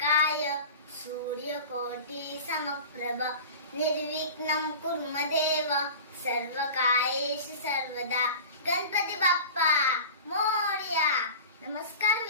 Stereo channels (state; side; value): inverted; both; correlation -0.37